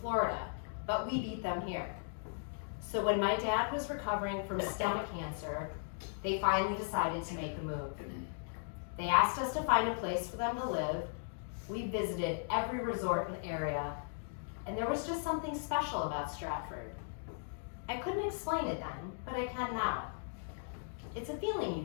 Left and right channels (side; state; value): right; silent; digital silence